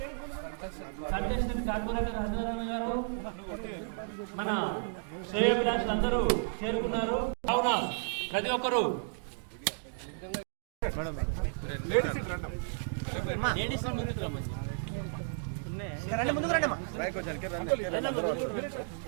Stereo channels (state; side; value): silent; left; digital silence